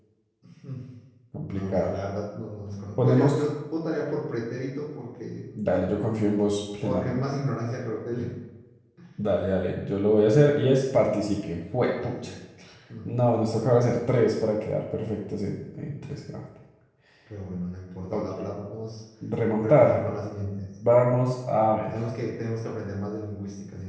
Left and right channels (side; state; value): both; identical; correlation 1.00